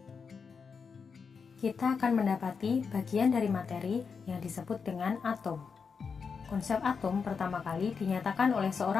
kita akan mendapati bagian dari materi yang disebut dengan atom. Konsep atom pertama kali dinyatakan oleh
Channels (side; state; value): right; quieter; 5.6 dB